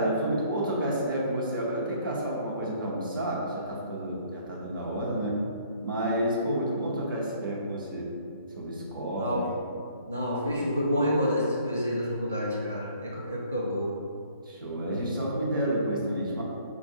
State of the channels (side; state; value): both; inverted; correlation -0.59